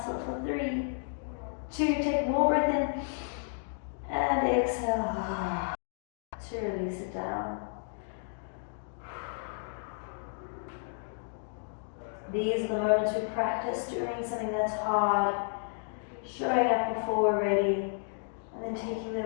for 3, 2, take more breath in, and exhale to release it down. These are the moments we practice doing something that's hard, showing up before we're ready, and then taking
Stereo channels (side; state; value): right; silent; digital silence